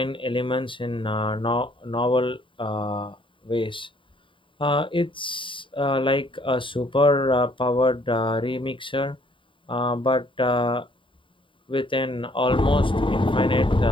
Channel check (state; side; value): late; right; 0.25 ms